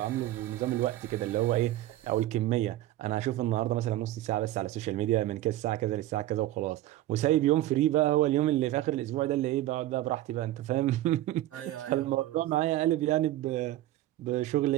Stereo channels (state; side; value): quieter; left; 14.9 dB